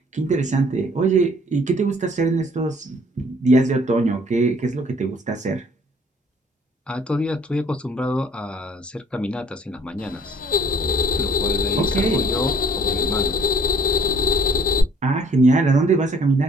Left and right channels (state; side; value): normal; both; correlation 0.58